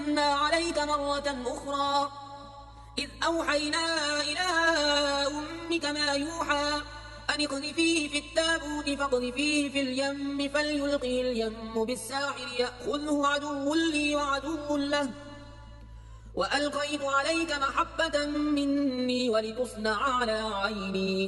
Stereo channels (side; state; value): both; identical; correlation 1.00